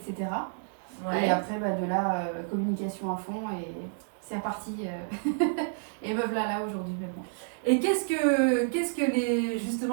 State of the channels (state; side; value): silent; left; digital silence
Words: Et après, de là, communication à fond et c'est reparti. Et me voilà là aujourd'hui maintenant. Et qu'est-ce que